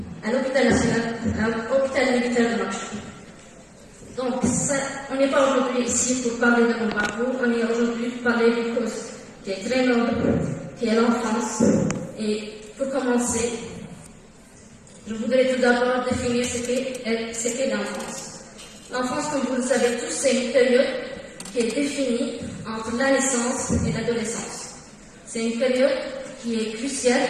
à l'hôpital national, à l'hôpital militaire de Nouakchott. Donc, on n'est pas aujourd'hui ici pour parler de mon parcours, on est aujourd'hui pour parler d'une cause qui est très noble, qui est l'enfance. Et pour commencer, je voudrais tout d'abord définir ce qu'est l'enfance. L'enfance, comme vous le savez tous, c'est une période qui est définie entre la naissance et l'adolescence. C'est une période qui est cruciale,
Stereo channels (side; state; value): both; identical; correlation 1.00